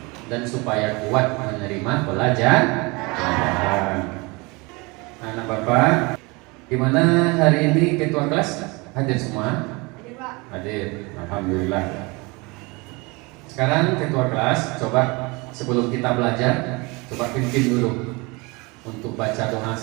dan supaya kuat menerima pelajaran. Anak Bapak, gimana hari ini ketua kelas hadir semua? Hadir, Pak. Hadir, alhamdulillah. Sekarang ketua kelas, coba sebelum kita belajar, coba pimpin dulu untuk baca doa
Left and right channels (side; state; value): left; quieter; 26.4 dB